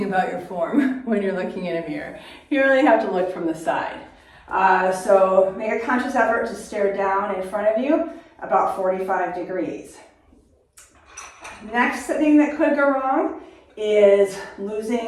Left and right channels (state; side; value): identical; both; correlation 1.00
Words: about your form when you're looking in a mirror. You really have to look from the side. So make a conscious effort to stare down in front of you about 45 degrees. Next thing that could go wrong is